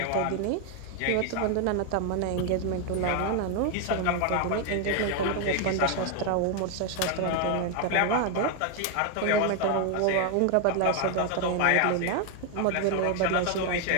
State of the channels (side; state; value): both; different; correlation 0.01